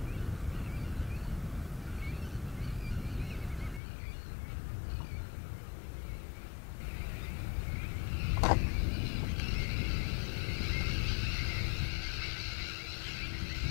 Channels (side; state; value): right; drops out; at 3.8 s